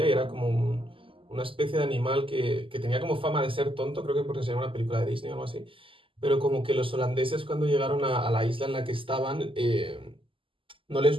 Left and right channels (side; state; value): left; late; 0.25 ms